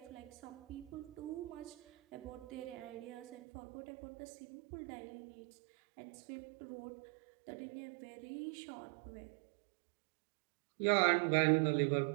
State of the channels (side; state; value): left; drops out; at 3.4 s